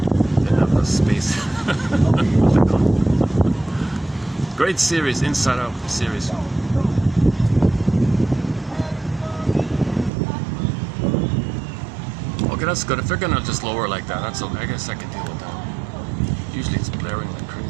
Didn't have the space. Great series, Inside Out series. Okay, that's good. If they're gonna just lower like that, that's okay. I guess I can deal with that. Usually it's blaring like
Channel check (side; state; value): left; drops out; at 10.1 s